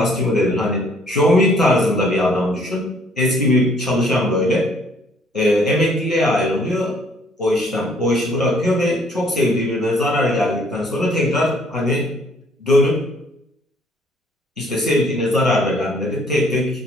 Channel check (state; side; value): normal; both; correlation 0.62